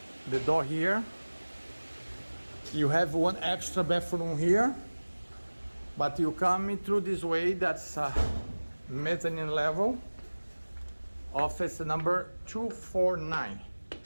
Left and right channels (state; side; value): inverted; both; correlation -1.00